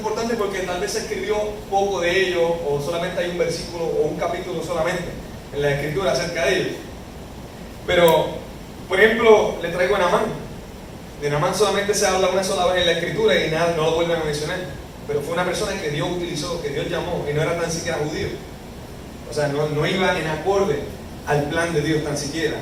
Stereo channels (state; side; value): identical; both; correlation 1.00